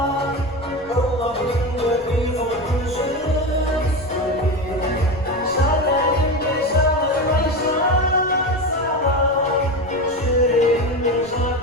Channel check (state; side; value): noise; left; rumble, 26 dB below the sound